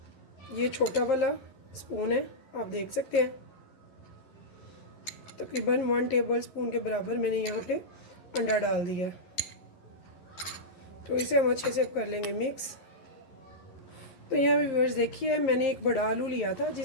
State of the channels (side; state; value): right; late; 11 ms